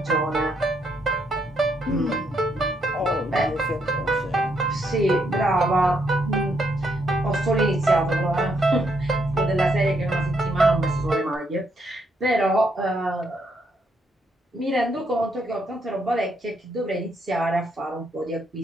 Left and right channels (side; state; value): both; normal; correlation 0.75